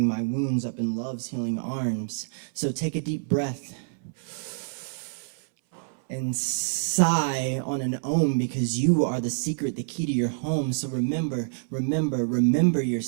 my wounds up in love's healing arms. So take a deep breath and sigh on an ohm, because you are the secret, the key to your home. So remember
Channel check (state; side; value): silent; left; 60 dB below the other